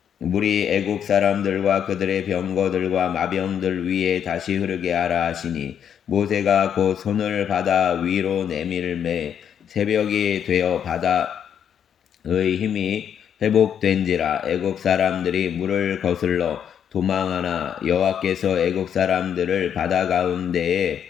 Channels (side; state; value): right; quieter; 8.6 dB